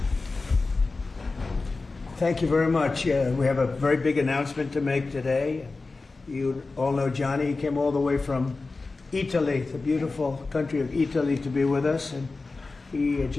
Thank you very much. We have a very big announcement to make today. You all know Johnny. He came all the way from Italy, the beautiful country of Italy, to be with us. And he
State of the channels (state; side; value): quieter; right; 3.7 dB